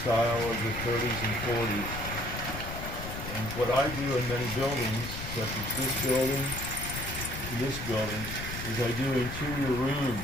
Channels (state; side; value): noise; left; rumble, 8 dB below the sound